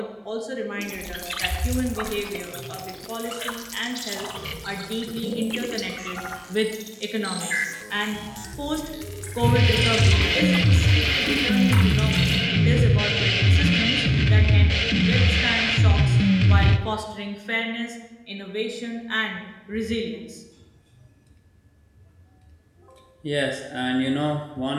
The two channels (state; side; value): identical; both; correlation 1.00